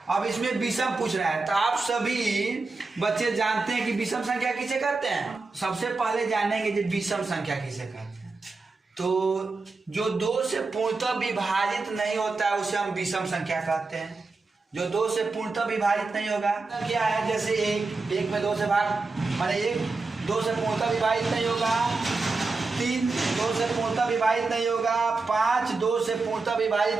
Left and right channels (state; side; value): quieter; left; 3.8 dB